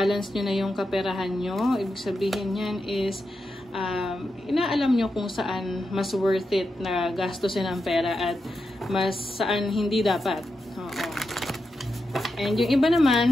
nyo na yung kaperahan nyo. Ibig sabihin yan is, inaalam nyo kung saan mas worth it na gastusin ang pera at mas saan hindi dapat. Oo. And yung iba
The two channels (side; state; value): both; normal; correlation 0.88